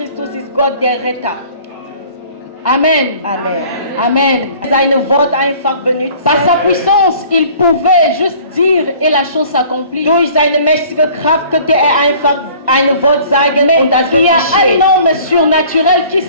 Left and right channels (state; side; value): inverted; both; correlation -0.50